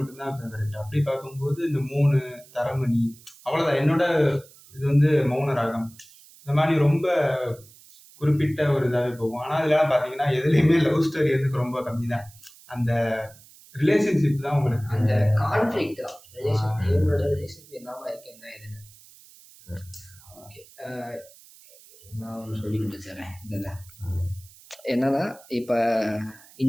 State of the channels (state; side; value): noise; right; hiss, 24 dB below the sound